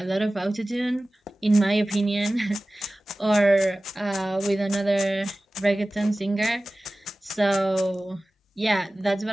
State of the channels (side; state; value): both; normal; correlation 0.97